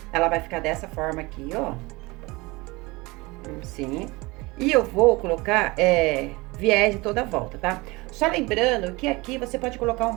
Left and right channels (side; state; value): left; quieter; 23.6 dB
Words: Ela vai ficar dessa forma aqui, ó. Assim. E eu vou colocar viés em toda a volta, tá? Só lembrando que aqui você pode colocar um